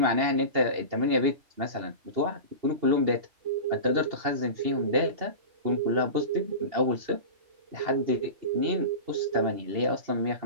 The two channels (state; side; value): late; left; 2.8 ms